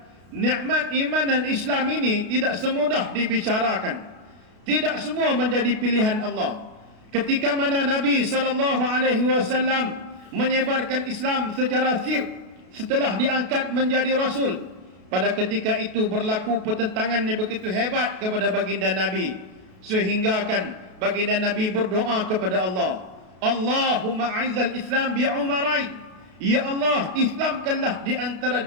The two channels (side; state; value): left; late; 33 ms